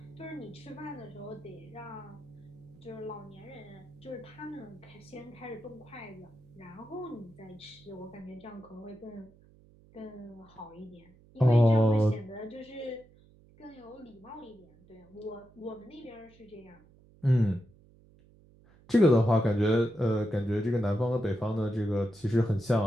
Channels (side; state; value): right; noise; hum, 27 dB below the sound